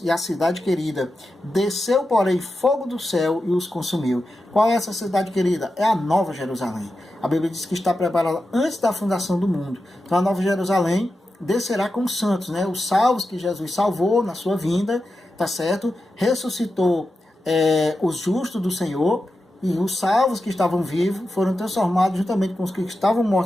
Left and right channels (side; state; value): both; normal; correlation 0.90